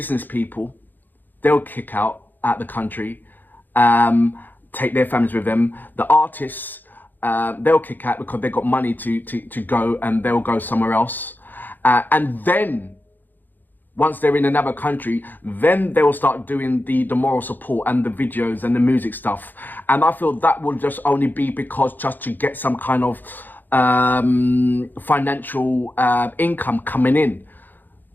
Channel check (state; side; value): late; right; 0.088 ms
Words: people. They'll kick out the country, take their families with them. The artists, they'll kick out because they've got money to go, and they'll go somewhere else. And then, once they're in another country, then they will start doing the moral support and the videos and the music stuff. And I feel that will just only be because just to get some kind of financial income coming in.